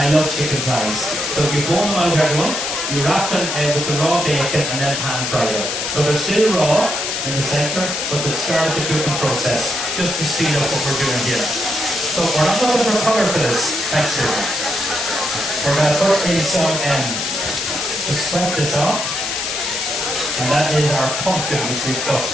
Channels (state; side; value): noise; left; hiss, 2 dB below the sound